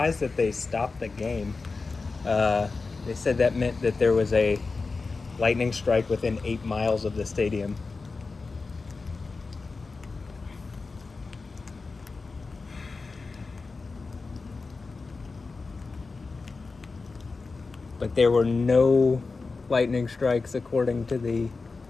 that they stopped the game. They said that meant that there was a lightning strike within 8 miles of the stadium. But there were no lightning strikes according to the...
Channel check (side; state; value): right; quieter; 4.1 dB